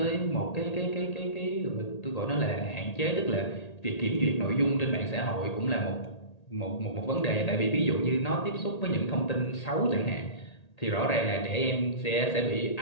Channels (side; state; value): right; late; 1.8 ms